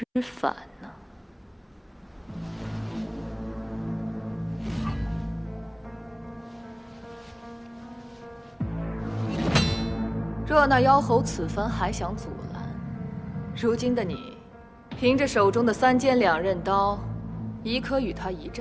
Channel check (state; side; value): identical; both; correlation 1.00